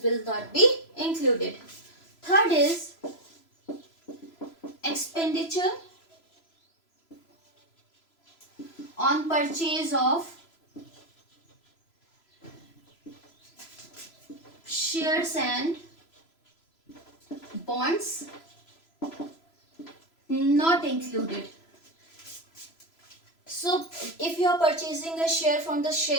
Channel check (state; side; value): late; right; 3.0 ms